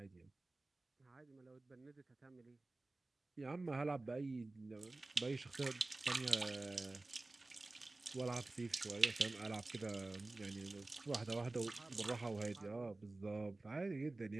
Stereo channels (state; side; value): quieter; left; 3.0 dB